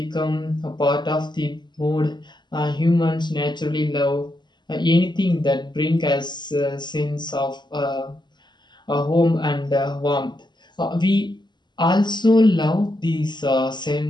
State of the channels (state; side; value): late; right; 0.21 ms